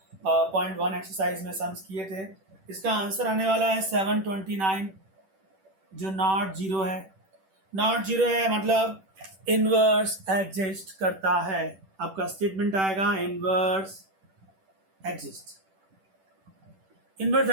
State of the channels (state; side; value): late; left; 10 ms